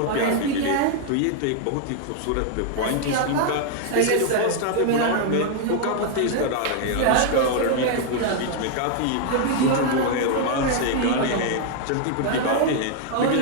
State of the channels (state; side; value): different; both; correlation 0.00